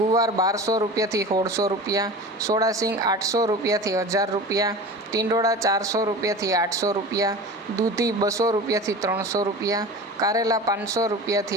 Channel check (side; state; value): both; normal; correlation 0.34